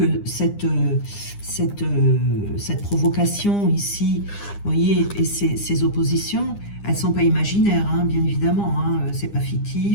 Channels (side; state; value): right; late; 9.9 ms